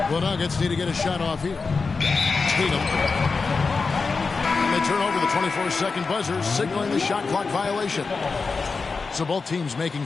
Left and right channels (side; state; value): right; quieter; 4.5 dB